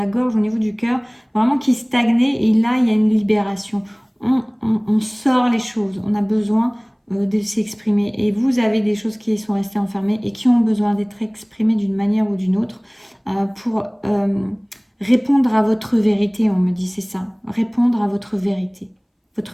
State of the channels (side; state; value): both; identical; correlation 1.00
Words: gorge, au niveau du cœur, vraiment qui stagnaient. Et là, il y a une libération. On sort les choses. On a besoin de s'exprimer. Et vous avez des choses qui sont restées enfermées et qui ont besoin d'être exprimées d'une manière ou d'une autre pour répondre à votre vérité, on me dit, c'est ça. Répondre à votre vérité